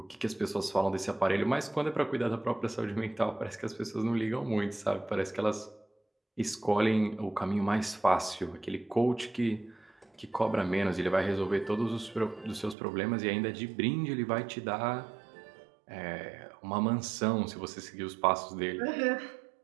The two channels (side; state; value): left; drops out; at 12.8 s